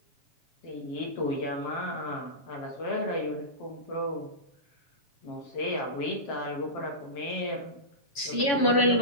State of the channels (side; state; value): right; late; 7.1 ms